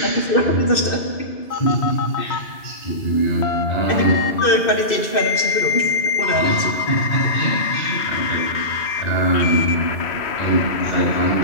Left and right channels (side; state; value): right; late; 2.6 ms